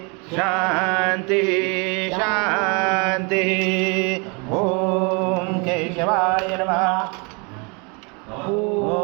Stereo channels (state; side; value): quieter; left; 32.1 dB